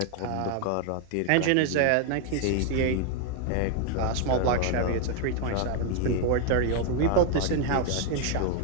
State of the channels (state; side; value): different; both; correlation 0.01